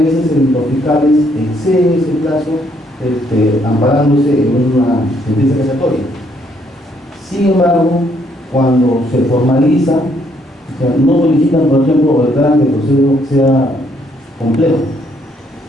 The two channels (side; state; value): both; normal; correlation 0.70